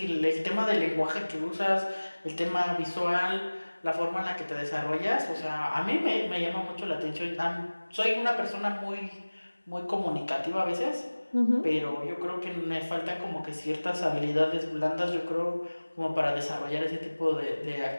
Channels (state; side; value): inverted; both; correlation -1.00